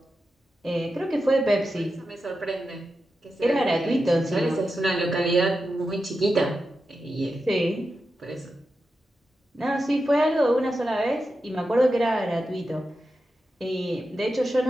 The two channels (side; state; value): both; normal; correlation 0.90